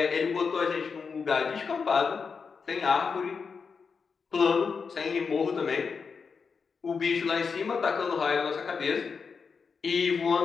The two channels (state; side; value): quieter; right; 5.5 dB